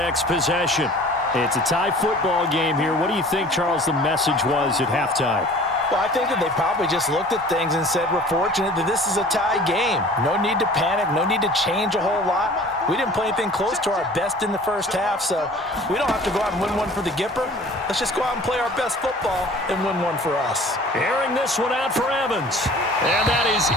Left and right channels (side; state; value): both; normal; correlation 0.46